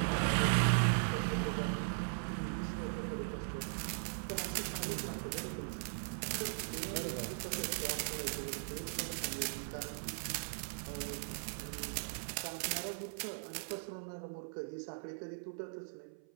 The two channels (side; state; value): left; silent; 52 dB below the other